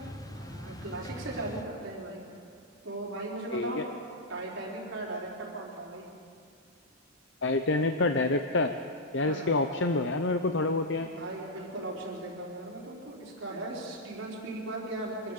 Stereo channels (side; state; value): both; normal; correlation -0.05